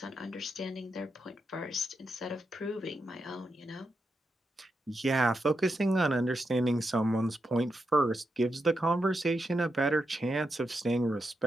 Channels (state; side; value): normal; both; correlation 0.85